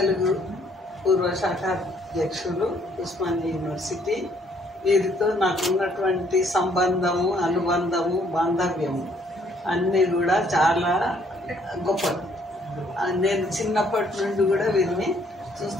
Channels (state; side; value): normal; both; correlation 0.65